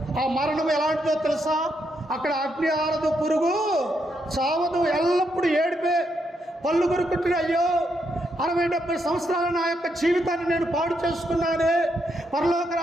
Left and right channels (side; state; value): both; normal; correlation 0.79